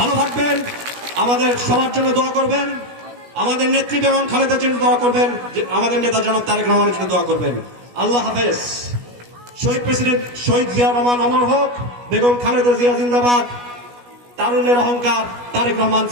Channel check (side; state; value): left; late; 16 ms